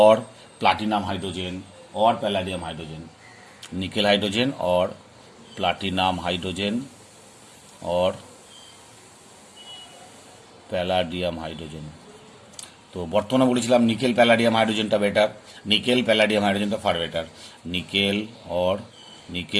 platinum hydrogen or palladium hydrogen nickel hydrogen और प्लाटिनाम हाइड्रोजेन और প্যালাডিয়াম হাইড্রোজেন। তো বর্তমানে বলেছিলাম নিকেল প্যালাডিয়াম হাইড্রোজেনটা বেটার, নিকেল প্যালাডিয়াম হাইড্রোজেনটা ফার বেটার, নিকেল और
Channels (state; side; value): identical; both; correlation 1.00